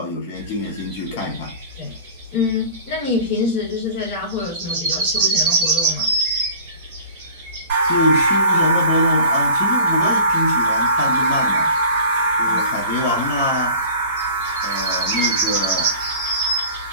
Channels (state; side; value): inverted; both; correlation -0.41